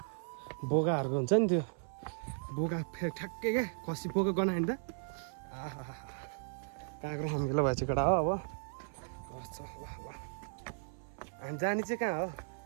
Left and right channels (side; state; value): left; silent; 54 dB below the other